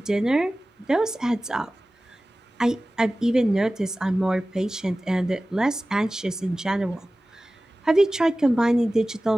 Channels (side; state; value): both; normal; correlation 0.97